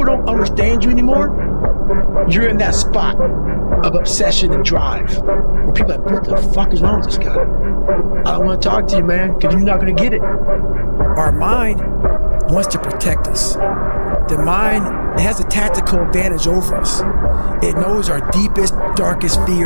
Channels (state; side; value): inverted; both; correlation -1.00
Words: don't understand you anymore, you're in that spot of obsession and drive. Where people are like, what the fuck is wrong with this guy? I don't want to talk to you, man, because you're not going to get it. Our mind wants to protect us. The mind has a tactical advantage over us. It knows our deepest, darkest